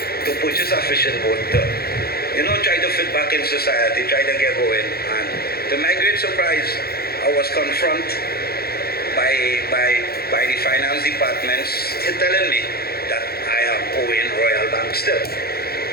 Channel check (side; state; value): right; late; 0.45 ms